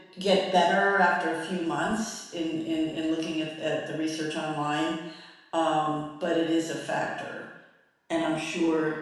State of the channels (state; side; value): identical; both; correlation 1.00